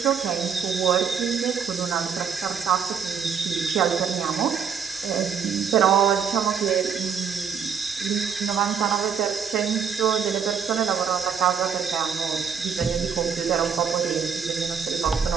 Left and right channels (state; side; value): quieter; left; 7.0 dB